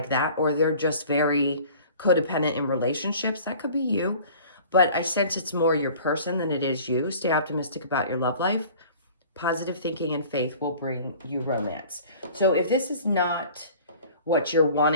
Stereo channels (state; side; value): inverted; both; correlation -0.46